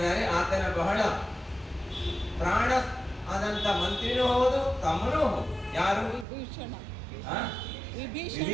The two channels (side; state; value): left; drops out; at 6.2 s